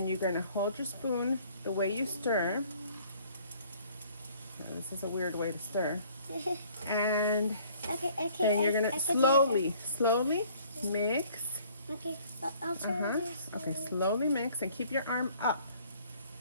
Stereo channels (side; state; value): both; inverted; correlation -0.57